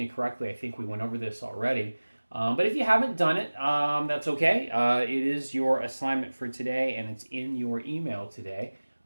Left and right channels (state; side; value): inverted; both; correlation -1.00